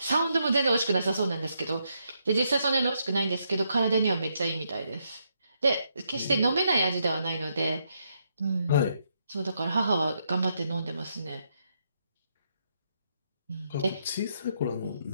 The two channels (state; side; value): inverted; both; correlation -0.78